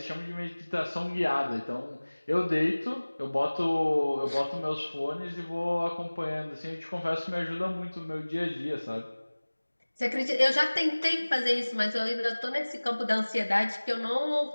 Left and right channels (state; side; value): inverted; both; correlation -1.00